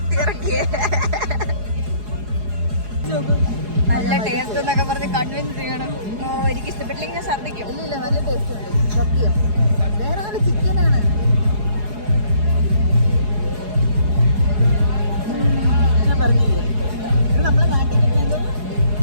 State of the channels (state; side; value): late; left; 4.8 ms